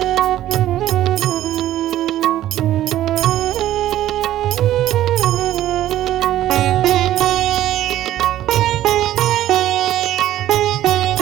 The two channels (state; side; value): quieter; left; 13.2 dB